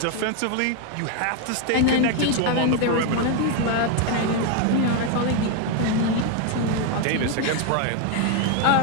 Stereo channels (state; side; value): different; both; correlation 0.01